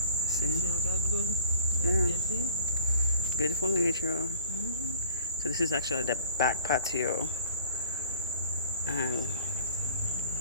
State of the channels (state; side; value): inverted; both; correlation -0.48